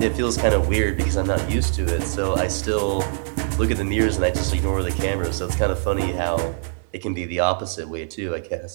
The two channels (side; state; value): left; silent; digital silence